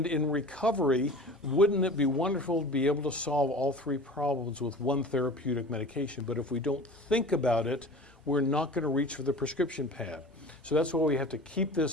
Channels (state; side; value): normal; both; correlation 0.38